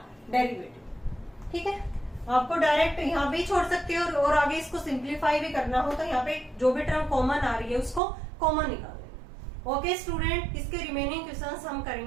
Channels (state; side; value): drops out; left; at 8.0 s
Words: डेरिवेटिव। ठीक है, आपको डायरेक्ट यहाँ पे ही छोड़ सकते हो और आगे इसको सिंप्लीफाई भी करना हो तो यहाँ पे जो भी टर्म कॉमन आ रही है उसको कॉमन निकाल लेना। ओके स्टूडेंट, इसके रिमेनिंग क्वेश्चंस हम